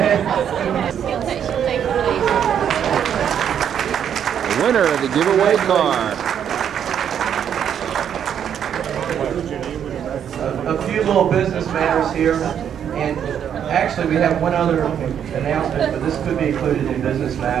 She'll take the lead. The winner of the giveaway car. A few little business matters here, and actually we have one other announcement, but this could be included in business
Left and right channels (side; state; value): left; quieter; 8.8 dB